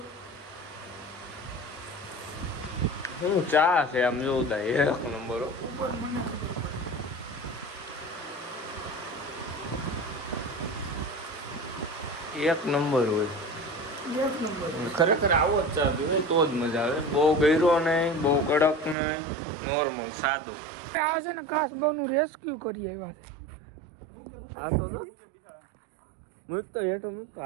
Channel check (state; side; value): drops out; left; at 18.9 s